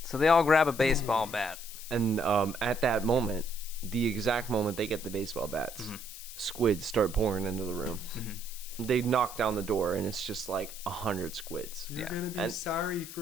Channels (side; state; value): left; noise; hiss, 12 dB below the sound